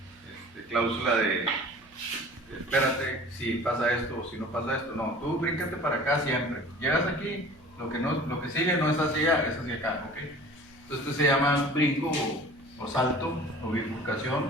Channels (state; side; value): noise; right; hum, 29 dB below the sound